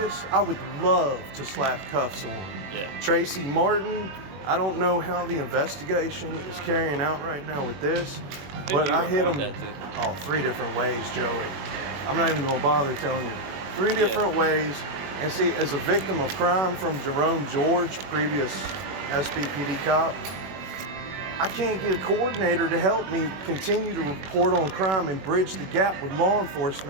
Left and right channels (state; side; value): late; left; 21 ms